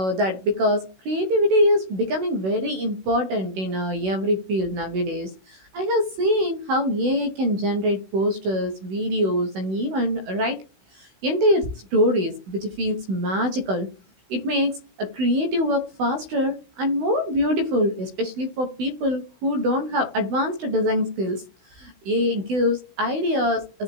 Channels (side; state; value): left; late; 16 ms